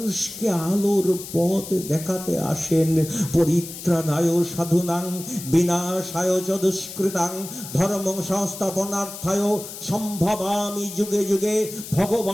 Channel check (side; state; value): left; noise; hiss, 11 dB below the sound